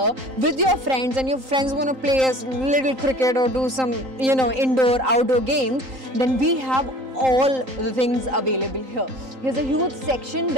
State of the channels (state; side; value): late; left; 3.8 ms